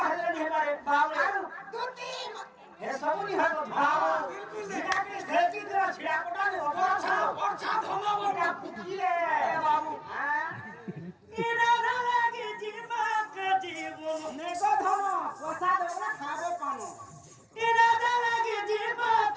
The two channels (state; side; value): identical; both; correlation 1.00